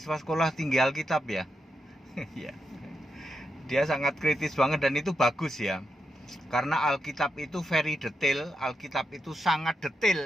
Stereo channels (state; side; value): normal; both; correlation 0.85